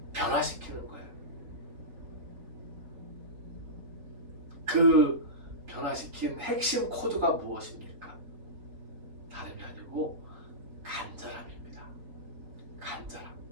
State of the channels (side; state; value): left; late; 3.8 ms